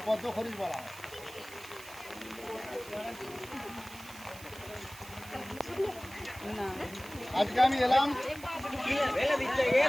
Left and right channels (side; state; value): right; noise; hiss, 17 dB below the sound